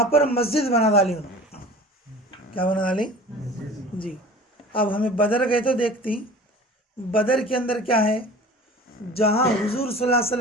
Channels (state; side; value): normal; both; correlation 0.41